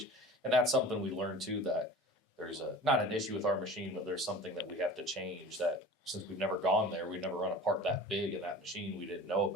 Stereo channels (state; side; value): normal; both; correlation 0.40